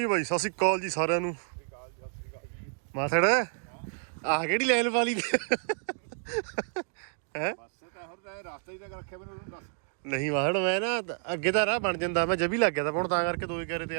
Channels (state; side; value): silent; left; 58 dB below the other